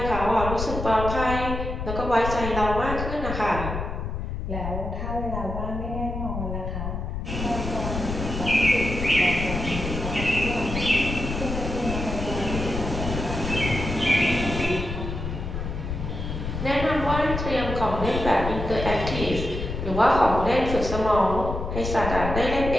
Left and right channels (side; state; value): left; noise; rumble, 5 dB below the sound